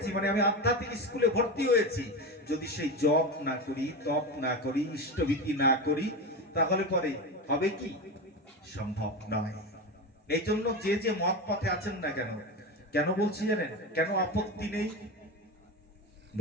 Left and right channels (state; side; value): normal; both; correlation 0.21